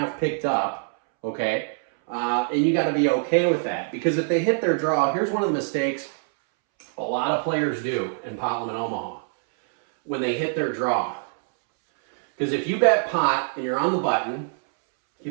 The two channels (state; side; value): silent; left; 63 dB below the other